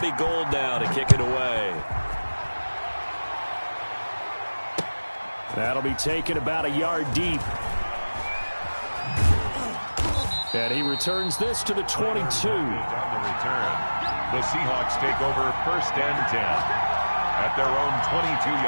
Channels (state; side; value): inverted; both; correlation -1.00